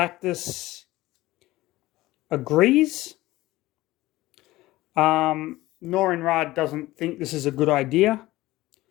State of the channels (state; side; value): quieter; right; 17.9 dB